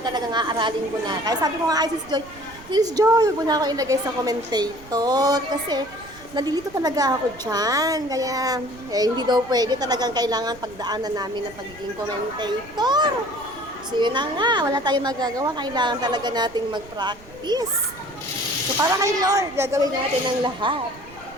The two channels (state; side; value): noise; right; rumble, 21 dB below the sound